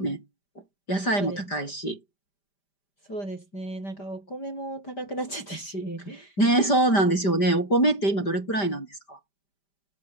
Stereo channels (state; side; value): late; right; 5.1 ms